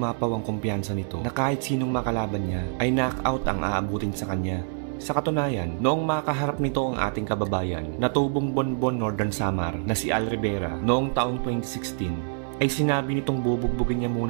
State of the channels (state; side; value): silent; left; 57 dB below the other